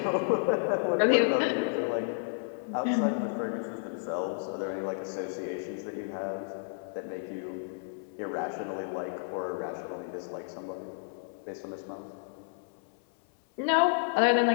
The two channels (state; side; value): silent; right; 57 dB below the other